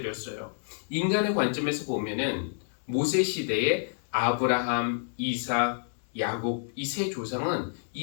인간의 관점에서 보면은 모세 시대에 아브라함, 이삭, 야곱 이 세 조상은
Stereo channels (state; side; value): silent; right; digital silence